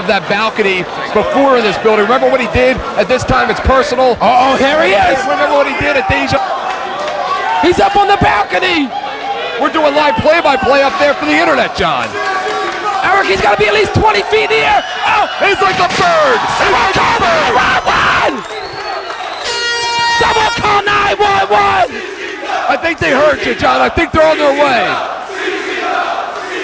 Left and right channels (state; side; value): identical; both; correlation 1.00